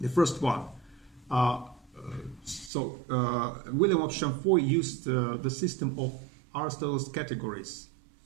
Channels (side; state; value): left; drops out; at 2.7 s